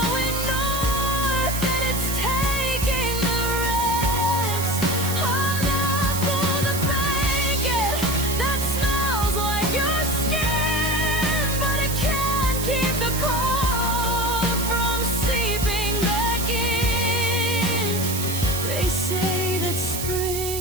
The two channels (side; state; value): right; noise; hiss, 5 dB below the sound